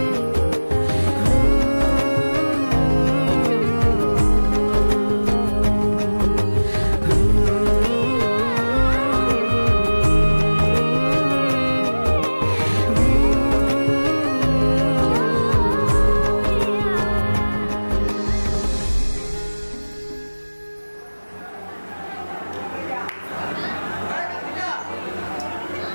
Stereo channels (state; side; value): inverted; both; correlation -1.00